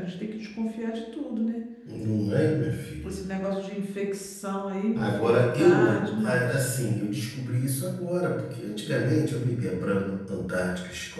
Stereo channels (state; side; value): identical; both; correlation 1.00